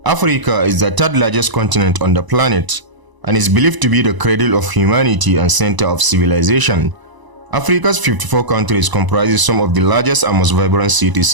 Africa is the third largest continent on the planet and is believed to be the cradle of humanity and center of civilization. Africa's 54 countries comprises some of the largest and most vibrant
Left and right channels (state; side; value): late; left; 1.0 ms